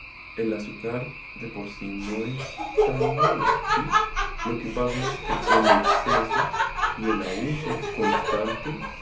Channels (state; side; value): identical; both; correlation 1.00